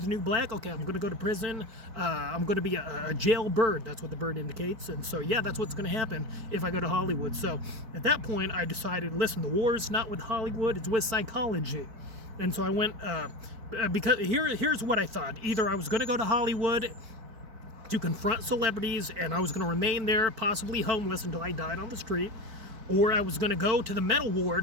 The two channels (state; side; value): late; left; 4.6 ms